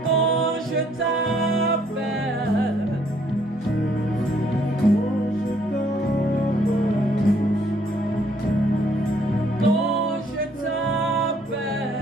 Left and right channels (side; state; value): both; normal; correlation 0.65